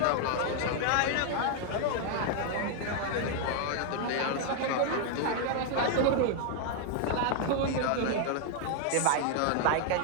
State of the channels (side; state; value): both; different; correlation 0.00